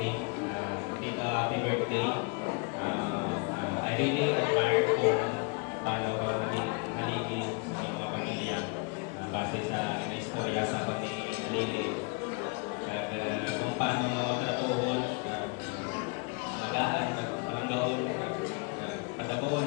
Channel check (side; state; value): right; quieter; 32.1 dB